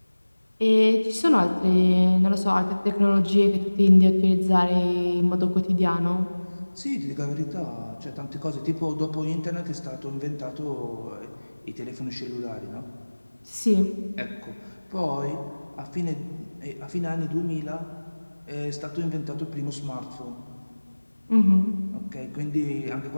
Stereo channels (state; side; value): inverted; both; correlation -1.00